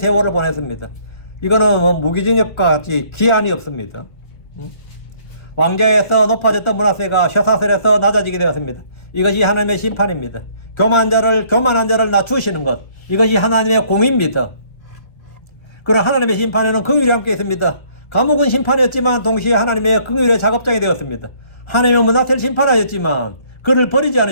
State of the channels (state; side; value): late; right; 1.7 ms